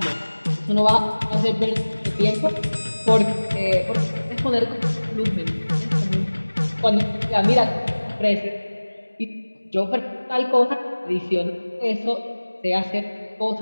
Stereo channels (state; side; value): inverted; both; correlation -1.00